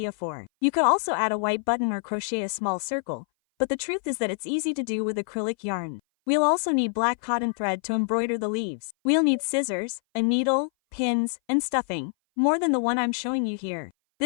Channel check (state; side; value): silent; right; 58 dB below the other